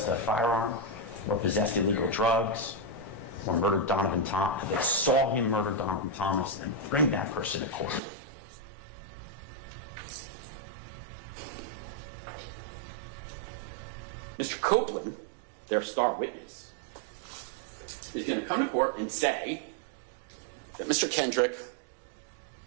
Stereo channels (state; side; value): drops out; left; at 8.0 s